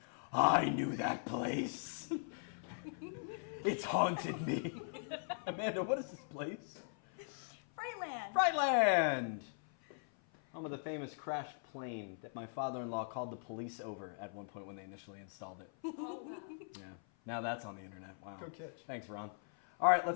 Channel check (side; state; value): right; silent; 51 dB below the other